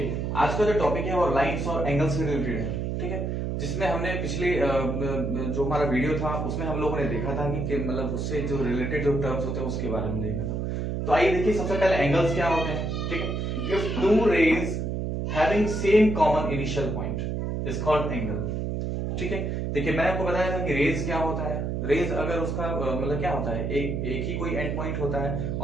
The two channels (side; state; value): right; noise; hum, 2 dB below the sound